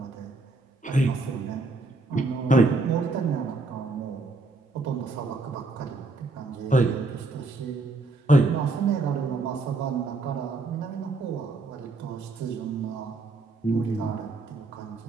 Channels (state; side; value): quieter; left; 3.4 dB